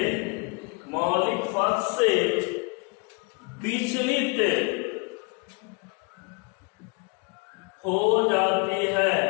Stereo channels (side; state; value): right; quieter; 30.7 dB